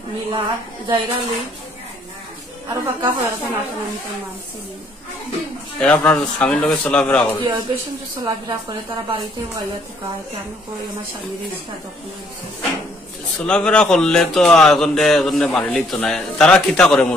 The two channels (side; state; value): both; normal; correlation 0.65